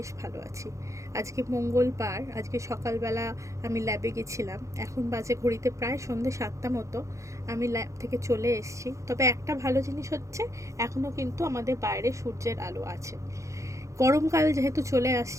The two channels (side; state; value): left; late; 0.15 ms